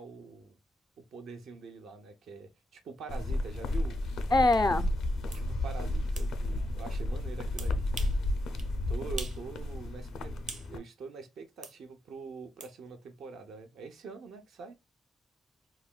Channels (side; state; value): both; normal; correlation 0.84